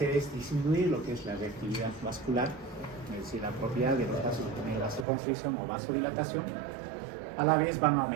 es disminuir lo que es la reactividad vascular, es decir, la propiedad de los vasos de tener vasoconstricción o vasodilatación. A la vez van a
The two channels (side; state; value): left; drops out; at 5.1 s